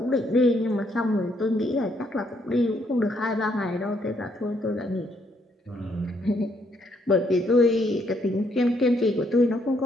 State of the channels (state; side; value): normal; both; correlation 0.72